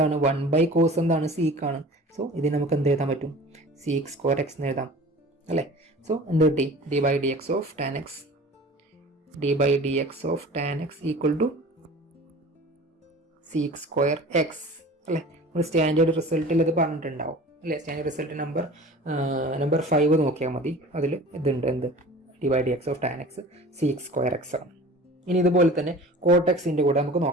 1 ബൈ കോസ് എന്താണ്, സീക്ക് ആണ്. സോ ഇതിന് നമുക്ക് എന്ത് എഴുതാൻ പറ്റും, സീക്ക് സ്ക്വയർ എക്സ് എന്ന് എഴുതാം അല്ലേ? സോ എന്ത് കിട്ടി? D by D X of tan x equal to sec square x അല്ലേ? നമ്മൾ സ്റ്റാൻഡേർഡ് റിസൾട്ടിൽ ഇത് പറഞ്ഞിട്ടുണ്ടാവും അല്ലേ? സ്റ്റാൻഡേർഡ് റിസൾട്ട് നമ്പർ 5 നോക്കിയാൽ മതി. അതിൽ ഇതുണ്ട്, എന്ത്? D by D X of tan x sec square x ആണ്. ഇനി ഇതുപോലെ തന്നെ കോട്ടെക്സിൻ്റെ കൂടെ നമുക്ക്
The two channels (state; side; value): normal; both; correlation 0.41